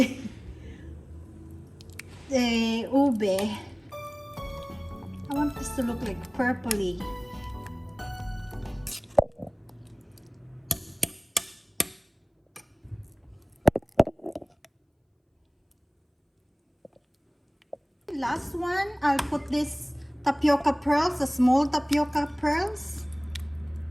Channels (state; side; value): identical; both; correlation 1.00